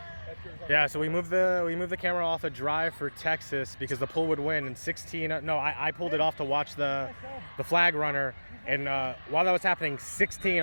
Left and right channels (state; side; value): inverted; both; correlation -1.00